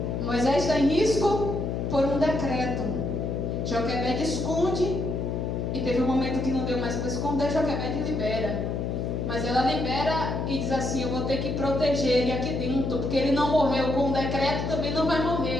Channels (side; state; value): left; noise; hum, 2 dB below the sound